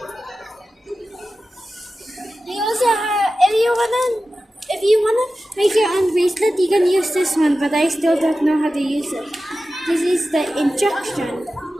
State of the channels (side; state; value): both; normal; correlation 0.94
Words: We also have, if you wanna make your own bracelet, you can use this one, but I still don't know how to use it. This is the instruction.